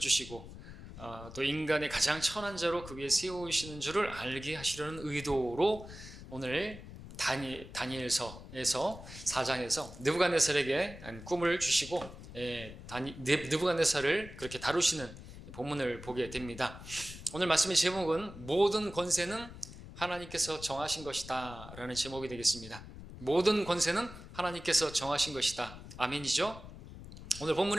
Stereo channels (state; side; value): noise; left; rumble, 14 dB below the sound